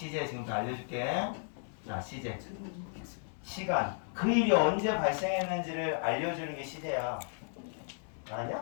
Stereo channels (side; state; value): right; silent; digital silence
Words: 지금부터 알려줄게. 자, 시제. 시간. 그 일이 언제 발생했는지를 알려주는 게 시제야.